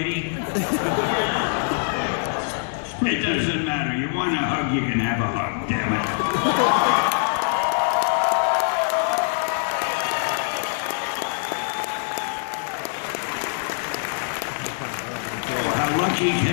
It doesn't matter. You want a hug, you can have a hug, damn it. Oh, how lucky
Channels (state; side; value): silent; right; 59 dB below the other